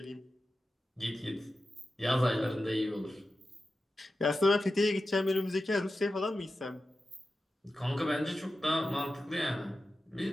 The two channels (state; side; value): normal; both; correlation 0.92